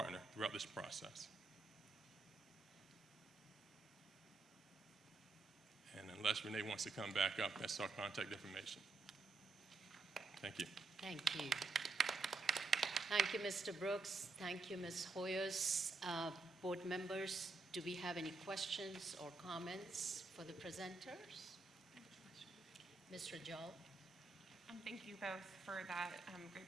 throughout this process. And unless Renee wants to come back up, that's our contact information. Thank you. Thank you. Thank you, Mr. Brooks. Thank you, Ms. Hoyers. Board members, do we have any questions or comments for the presenters? Ms. Rajal? Thank you both for that great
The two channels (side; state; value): left; quieter; 3.7 dB